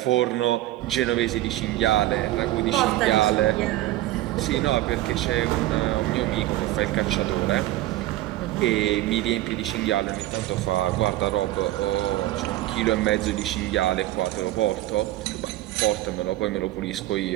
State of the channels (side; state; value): left; quieter; 15.9 dB